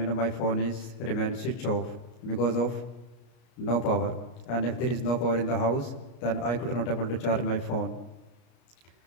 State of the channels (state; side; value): late; right; 33 ms